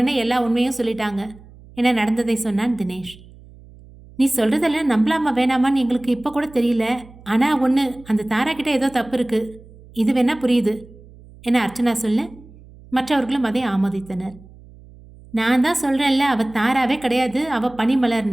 எல்லா உண்மையும் சொல்லிட்டாங்க என நடந்ததை சொன்னான் தினேஷ். நீ சொல்கிறதெல்லாம் நம்பலாமா வேணாமான்னு எங்களுக்கு இப்போ கூட தெரியல. ஆனால் ஒன்று, அந்த தாரா கிட்ட ஏதோ தப்பு இருக்குது. இது வேணா புரியுது என அர்ச்சனா சொல்ல, மற்றவர்களும் அதை ஆமோதித்தனர். நான் தான் சொல்கிறேன்ல, அவள் தாராவே கிடையாது, அவள்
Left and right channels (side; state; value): right; noise; hum, 22 dB below the sound